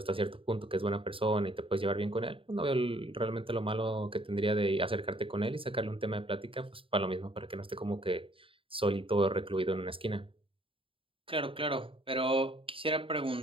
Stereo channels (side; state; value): left; late; 0.26 ms